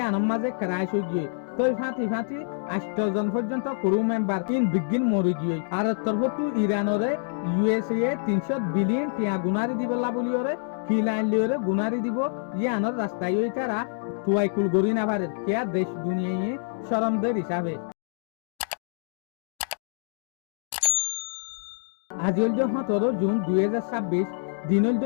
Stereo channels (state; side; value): silent; right; digital silence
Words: মাঝে ক্রাশ হয়ে গিয়ে তই ফাঁতি 8 জন পর্যন্ত ক্রু মেম্বার ইন বিজ্ঞান মরি গিয়ে আর তরফতু ইরানরে USA 300 বিলিয়ন টিয়া গুনারি দিব লাবলিওরে কিলাইন লিওরে গুনারি দিব ইয়ানোর রাস্তায় ওই তারা তুয়াইকুল গরি না পারে কিয়া দেশ দুনিয়ায় শরমদের হিসাবে আজি হল 17 জুন 2026 দিন হল